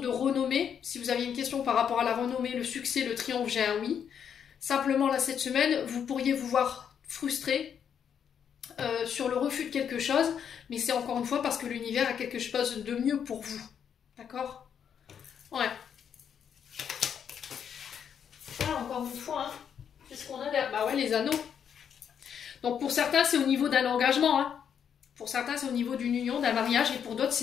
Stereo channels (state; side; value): quieter; right; 8.0 dB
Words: renommée. Si vous aviez une question par rapport à la renommée, le succès, le triomphe, j'ai un oui. Simplement, là, cette semaine, vous pourriez vous voir frustré sur le refus de quelque chose, mais c'est encore une fois parce que l'univers a quelque chose de mieux pour vous. D'accord? Ouais. Voilà, encore une fois, hein. Qu'est-ce qu'on a là? Bah ouais, les anneaux. Donc, pour certains, c'est au niveau d'un engagement, hein. Pour certains, c'est au niveau d'une union, d'un mariage, et pour d'autres,